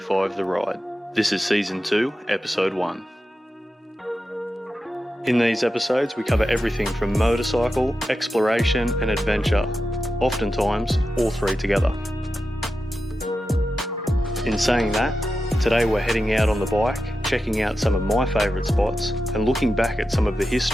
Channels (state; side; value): normal; both; correlation 0.91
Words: The Ride. This is Season 2, Episode 1. In these episodes we cover everything from motorcycle, exploration and adventure, oftentimes all three together. In saying that, today we're heading out on the bike, checking out some of my favourite spots and looking back at some of the